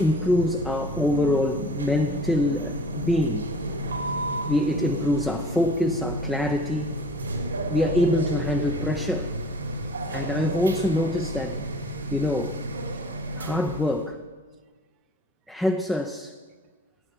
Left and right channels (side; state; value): both; normal; correlation 0.49